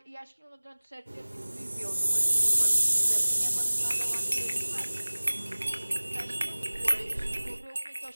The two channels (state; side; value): inverted; both; correlation -1.00